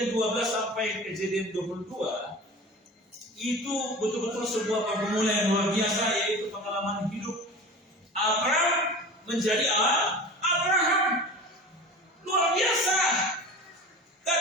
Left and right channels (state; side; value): normal; both; correlation 0.36